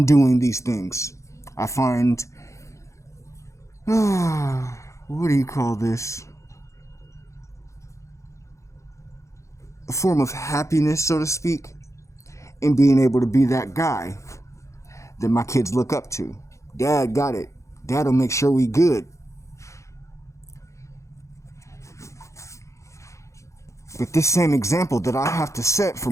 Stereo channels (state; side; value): late; right; 0.15 ms